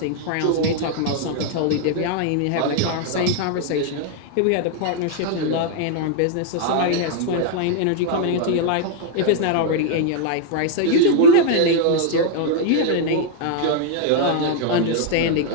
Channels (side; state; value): both; different; correlation 0.00